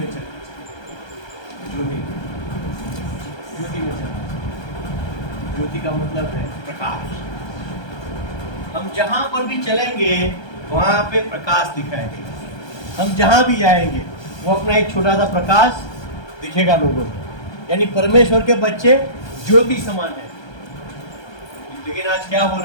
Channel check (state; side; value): late; right; 1.2 ms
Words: चलना चाहिए। ज्योति में चलना चाहिए। ज्योति का मतलब है प्रकाश। हम जहाँ पर भी चलेंगे वहाँ पे प्रकाश दिखाई देगा। हम जहाँ भी जाएंगे वो अपना एक छोटा सा प्रकाश दिखेगा लोगों को। यानी परमेश्वर के बच्चे ज्योति समान है। लेकिन आज क्या हो